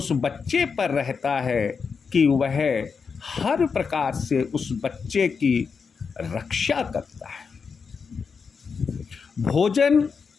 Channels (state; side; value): quieter; right; 5.6 dB